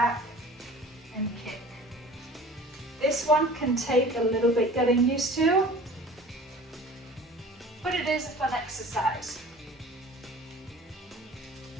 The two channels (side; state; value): both; normal; correlation 0.44